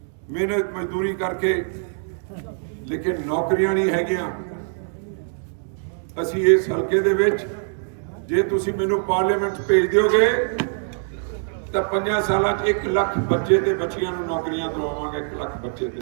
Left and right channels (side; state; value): left; silent; digital silence